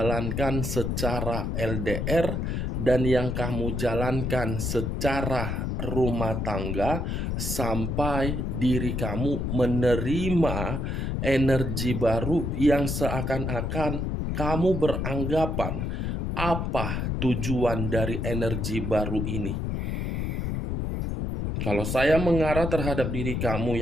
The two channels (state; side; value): noise; left; rumble, 1 dB below the sound